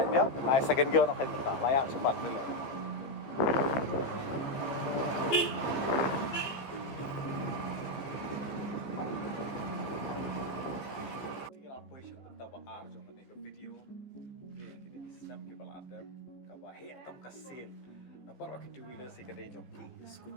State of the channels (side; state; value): right; late; 15 ms